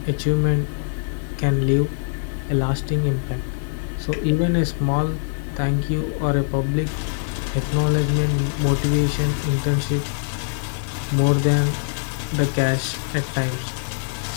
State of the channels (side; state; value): right; silent; digital silence